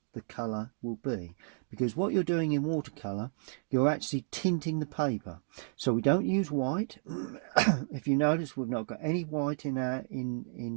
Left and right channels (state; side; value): silent; left; digital silence